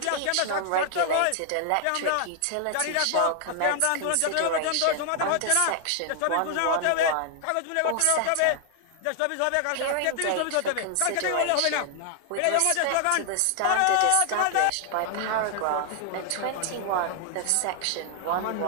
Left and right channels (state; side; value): different; both; correlation 0.00